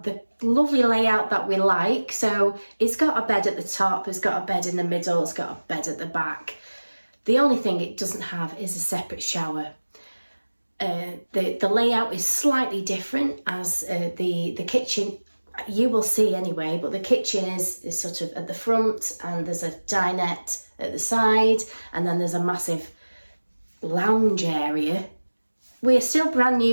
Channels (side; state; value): both; inverted; correlation -1.00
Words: the lovely layout that we like. So it's got a bed at the top, it's got a bed in the middle, it's got a bed at the back. The only thing it doesn't have is a separate shower. The layout is slightly different, as the kitchen, you will see anyway, but the kitchen is sort of at the front, and there's a dinette at the side, and then there's a massive lounge area. We're still brand